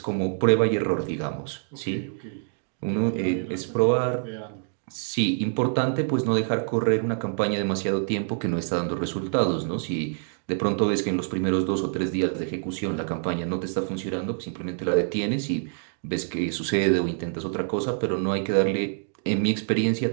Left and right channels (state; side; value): silent; left; digital silence